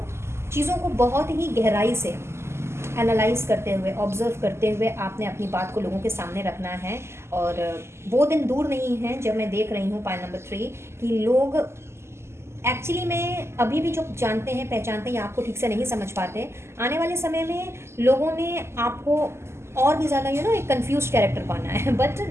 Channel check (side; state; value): left; late; 0.13 ms